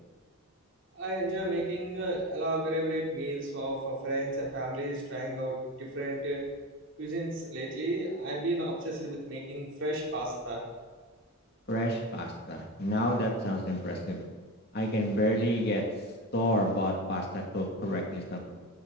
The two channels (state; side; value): normal; both; correlation 0.24